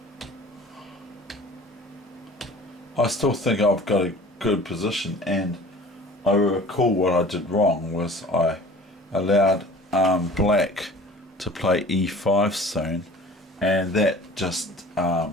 I still think I've got a good position, and I recall what I did wrong was I allowed black to play E5 soon, and that just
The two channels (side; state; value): both; normal; correlation 0.45